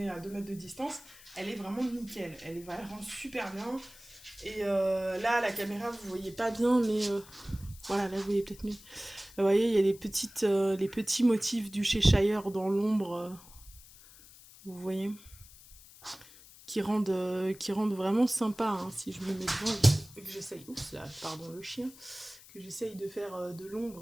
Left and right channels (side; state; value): left; noise; hiss, 21 dB below the sound